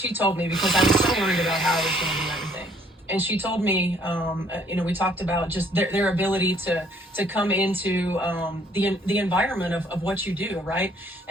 told me because I was so worried about how I was going to do everything. And she told me, we talked about just their ability to come into the environment of what you do, right?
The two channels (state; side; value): normal; both; correlation 0.62